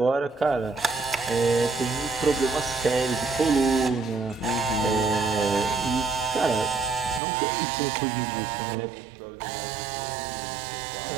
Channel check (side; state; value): left; drops out; at 7.2 s